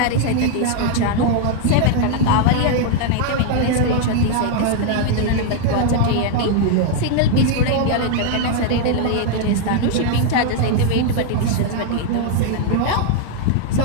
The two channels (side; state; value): both; different; correlation 0.00